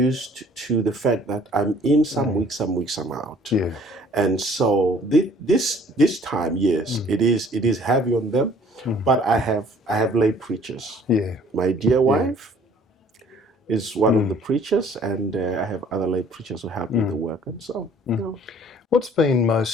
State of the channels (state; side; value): normal; both; correlation 0.55